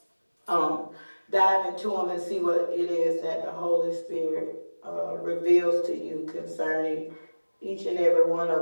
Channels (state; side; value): inverted; both; correlation -1.00